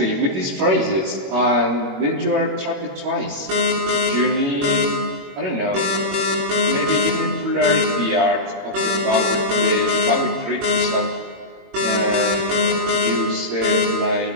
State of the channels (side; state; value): left; late; 22 ms